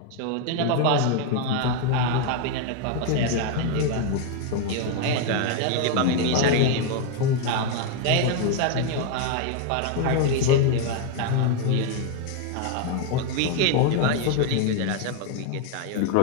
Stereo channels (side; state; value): both; different; correlation 0.01